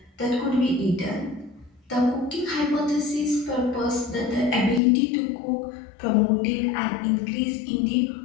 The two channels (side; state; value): right; drops out; at 4.8 s